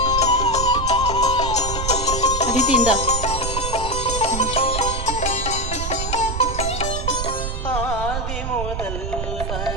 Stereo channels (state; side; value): noise; right; rumble, 4 dB below the sound